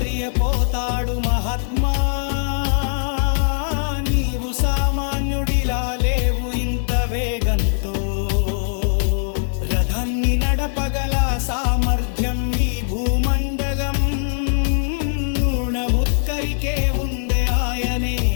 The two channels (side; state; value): right; silent; digital silence